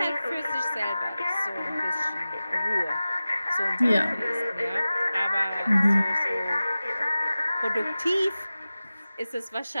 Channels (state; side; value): inverted; both; correlation -0.96